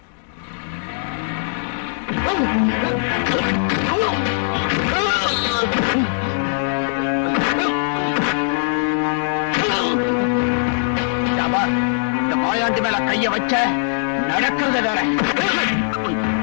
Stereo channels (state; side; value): silent; right; digital silence